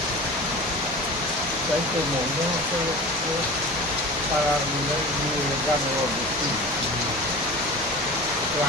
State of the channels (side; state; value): both; normal; correlation 0.35